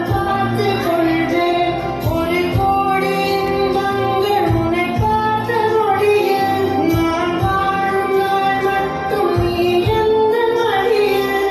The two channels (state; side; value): identical; both; correlation 1.00